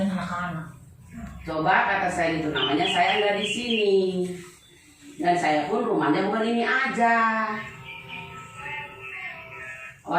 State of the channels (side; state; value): both; identical; correlation 1.00